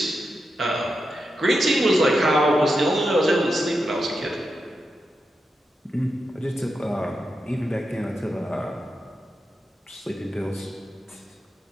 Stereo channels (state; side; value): normal; both; correlation 0.87